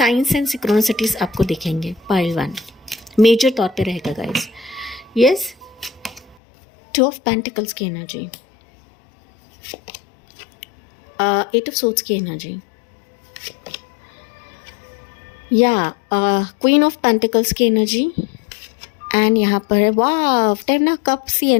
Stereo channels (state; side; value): drops out; right; at 6.4 s